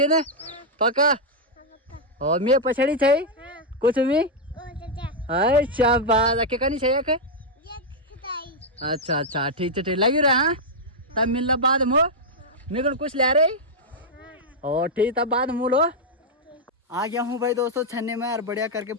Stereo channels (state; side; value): normal; both; correlation -0.03